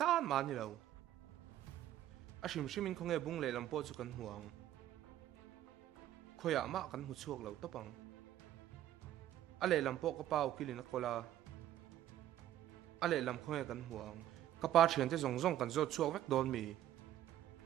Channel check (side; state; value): left; quieter; 12.4 dB